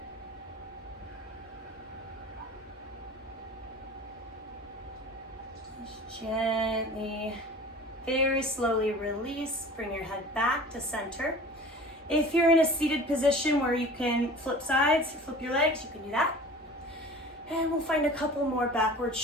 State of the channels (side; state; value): both; normal; correlation 0.41